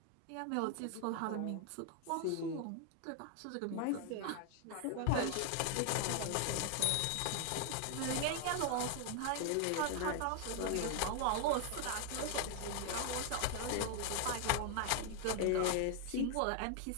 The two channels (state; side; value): different; both; correlation 0.00